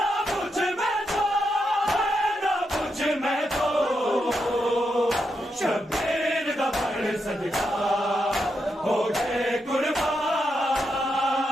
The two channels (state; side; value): normal; both; correlation 0.83